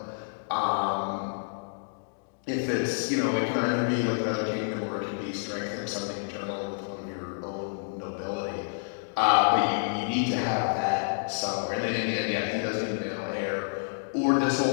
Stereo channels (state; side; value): silent; right; digital silence